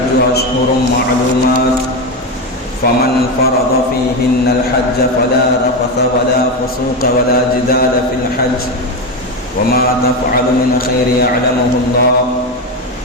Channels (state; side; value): normal; both; correlation 0.15